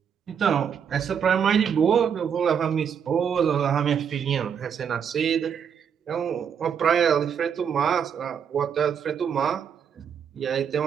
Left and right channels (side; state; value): left; quieter; 7.6 dB